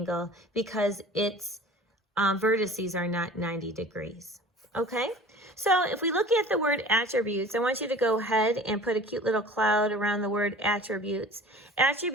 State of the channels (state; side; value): normal; both; correlation 0.43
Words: because its vertices are not 90 degrees. Okay? So if we look at the word attributes, I want you to go ahead and put a cute little cloud around the word attributes.